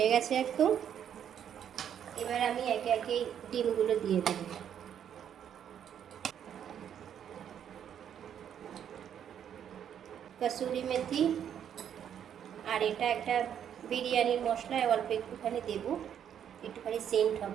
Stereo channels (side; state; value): left; quieter; 9.2 dB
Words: গেছে একদম, এবার আমি একে একে ডিমগুলো দিয়ে দেব। কসুরি মেথি, আর এটা একটা বিরিয়ানির মশলা, অল্প একটুখানি দেব, একটুখানি সেন্ট